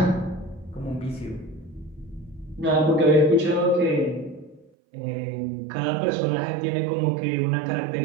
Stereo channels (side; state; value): left; drops out; at 4.7 s